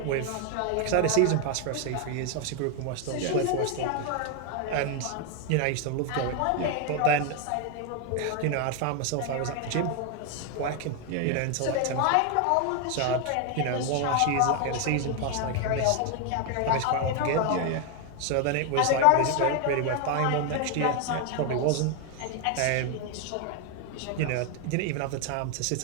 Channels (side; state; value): both; different; correlation 0.01